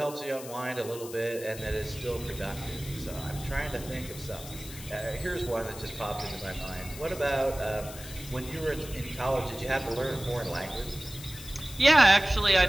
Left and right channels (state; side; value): noise; left; hiss, 14 dB below the sound